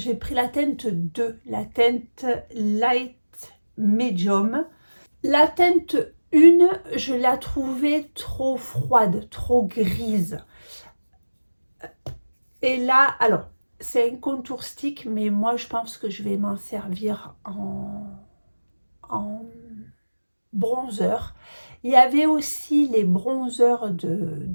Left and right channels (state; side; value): inverted; both; correlation -1.00